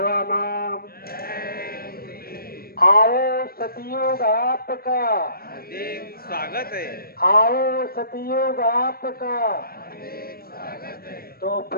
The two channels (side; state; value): right; late; 0.44 ms